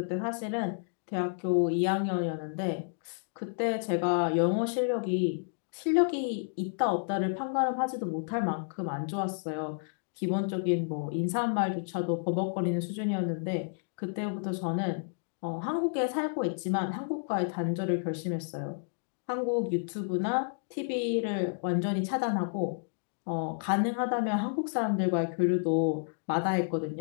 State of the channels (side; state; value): right; silent; digital silence